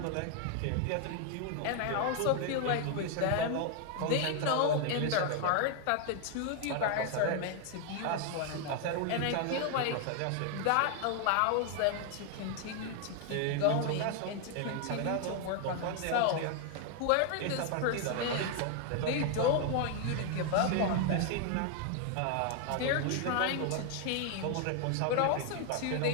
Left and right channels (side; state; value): both; different; correlation 0.00